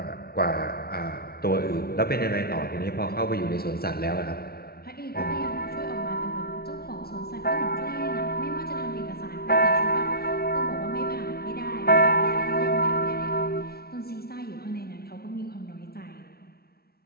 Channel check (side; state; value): right; late; 0.45 ms